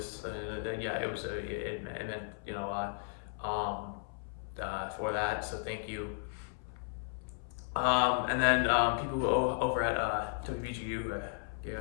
and yeah, it was it meant a lot for that. So thank you. And then people over at WBGU, yeah,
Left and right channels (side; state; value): right; silent; 54 dB below the other